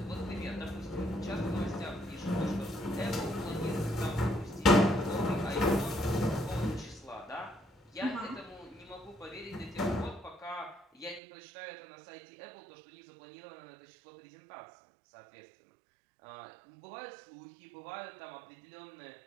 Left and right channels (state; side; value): drops out; left; at 11.2 s